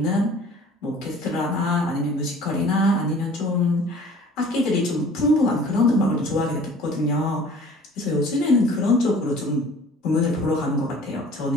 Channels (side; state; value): both; normal; correlation 0.48